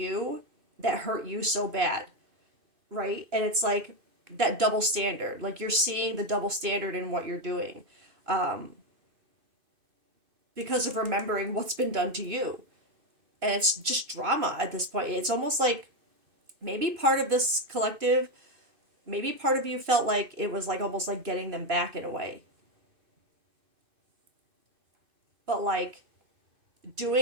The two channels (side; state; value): left; late; 2.6 ms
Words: that hurt you so bad, right? And it's like that double standard. Like you're seeing the double standard in what you're doing, because of remembering what's been done to you. And it's just drama at this point. It's almost like maybe part of this collective, maybe part of you felt like it was like almost like getting them back in a way. But like